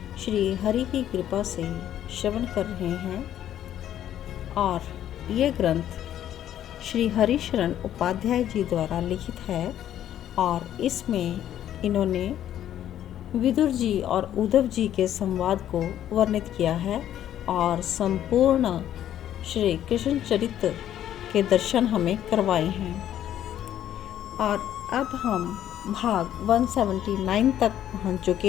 श्री हरि की कृपा से श्रवण कर रहे हैं और ये ग्रंथ श्री हरिशरण उपाध्याय जी द्वारा लिखित है और इसमें इन्होंने विदुर जी और उद्धव जी के संवाद को वर्णित किया है और संपूर्ण श्री कृष्ण चरित्र के दर्शन हमें करवाए हैं। और अब हम भाग 179 तक पहुंच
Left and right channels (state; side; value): quieter; right; 11.2 dB